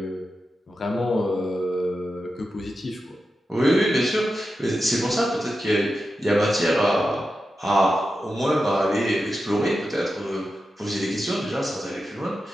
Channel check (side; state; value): both; normal; correlation 0.90